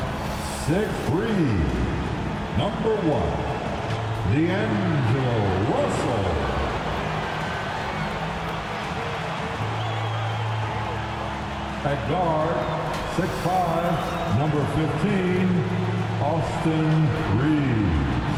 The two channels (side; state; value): both; identical; correlation 1.00